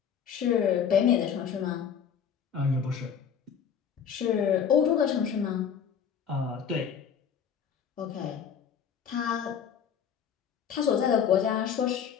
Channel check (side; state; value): right; quieter; 7.7 dB